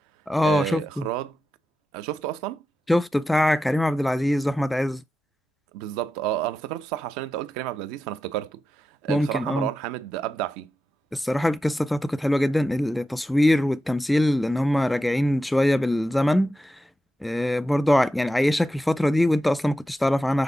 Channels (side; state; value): both; normal; correlation 0.90